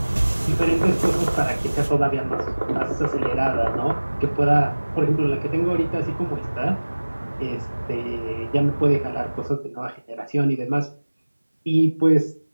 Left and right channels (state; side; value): inverted; both; correlation -1.00